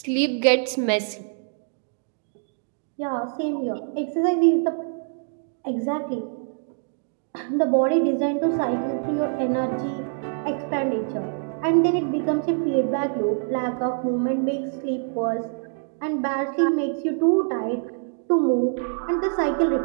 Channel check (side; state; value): left; silent; 62 dB below the other